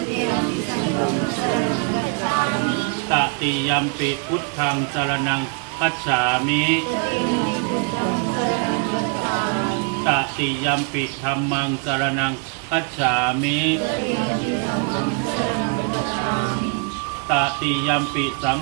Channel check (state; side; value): quieter; left; 37.2 dB